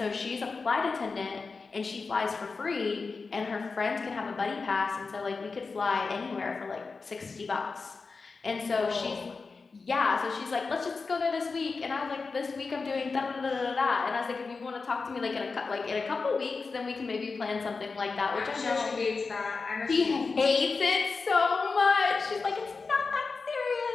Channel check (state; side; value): quieter; right; 4.4 dB